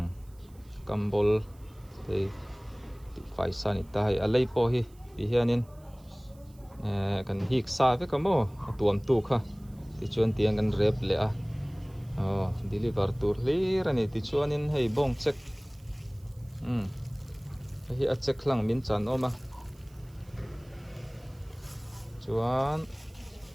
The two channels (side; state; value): right; noise; hiss, 29 dB below the sound